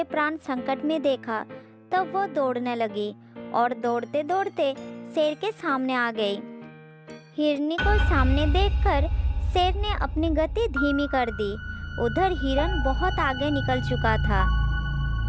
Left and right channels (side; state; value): both; identical; correlation 1.00